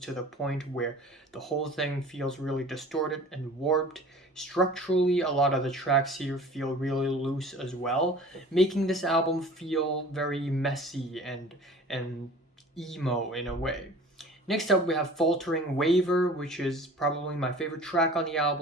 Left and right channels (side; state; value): both; normal; correlation 0.44